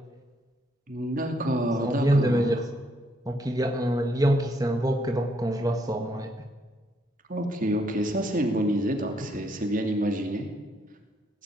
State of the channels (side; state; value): both; normal; correlation 0.72